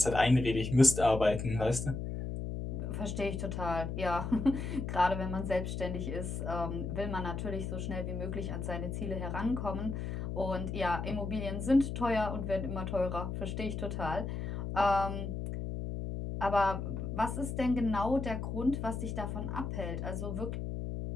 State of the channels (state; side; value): noise; left; hum, 4 dB below the sound